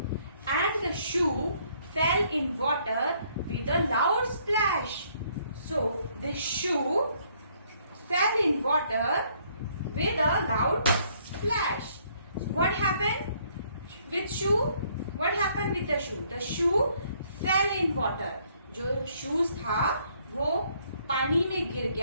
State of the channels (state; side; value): inverted; both; correlation -0.66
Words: and the shoe fail in water with a loud splash. So this shoe fail in water with a loud splash. What happened with shoe? What happened with the shoe? The shoe fail in water. जो shoes था वो पानी में गिर